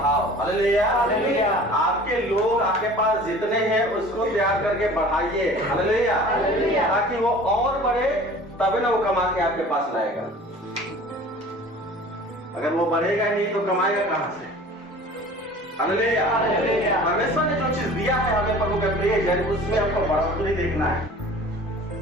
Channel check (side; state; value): both; normal; correlation 0.44